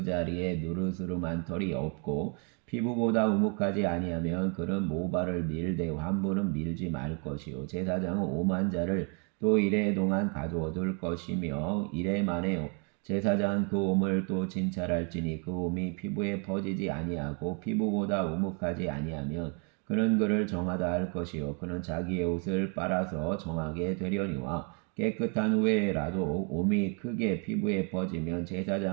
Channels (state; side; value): quieter; left; 36.9 dB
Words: 자리에 누르스름한 털이 없고 피부보다 우묵하지 아니하면 그는 모발을 밀되 환부는 밀지 말 것이요 제사장은 오만 자를 또 이래 동안 가두어둘 것이며 이래 만에 제사장은 그 옴을 또 진찰할지니 그 옴이 피부에 퍼지지 아니하고 피부보다 우묵하지 아니하면 그는 그를 정하다 할 것이요 그는 자기의 옷을 빨아서 정하게 되려니와 깨끗한 후에라도 옴이 크게 피부에 퍼지면